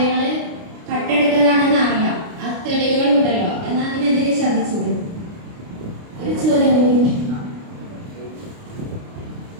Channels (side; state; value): left; late; 29 ms